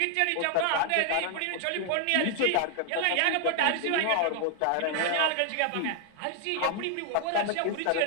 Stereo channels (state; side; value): different; both; correlation 0.00